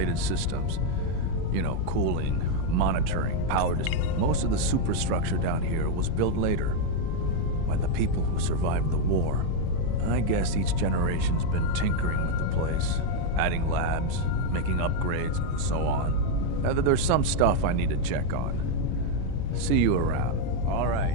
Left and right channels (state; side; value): different; both; correlation 0.01